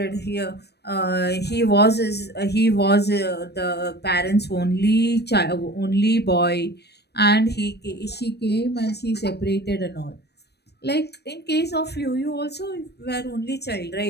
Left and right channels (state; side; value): late; right; 0.48 ms